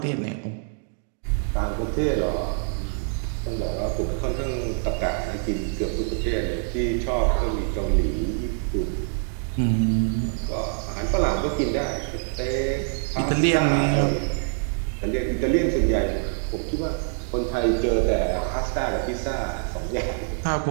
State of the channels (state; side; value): silent; left; 58 dB below the other